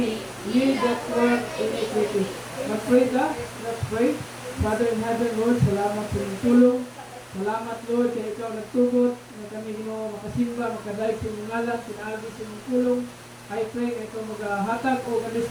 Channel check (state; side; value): identical; both; correlation 1.00